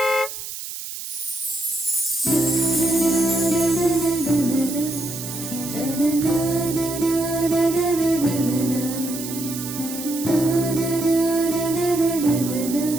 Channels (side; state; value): right; noise; hiss, 9 dB below the sound